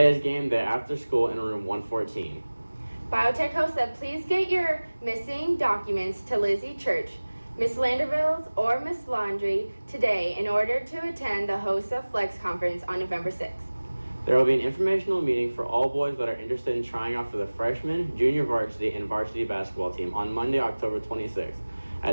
is game day after school in room 114. Biotech host said please get your missing documents to Lizzie Church, Miss Landerville's, or Miss Laundry today in order to attend the HOSA Flex Conference on November 6th. There will be an informational meeting for all boys that are interested in trying out for the freshman, junior varsity, and varsity basketball team on Monday, October 26th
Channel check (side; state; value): both; inverted; correlation -1.00